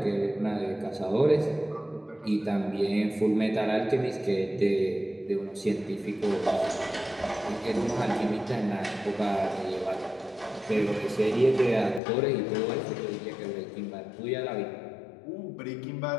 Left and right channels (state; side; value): drops out; right; at 12.0 s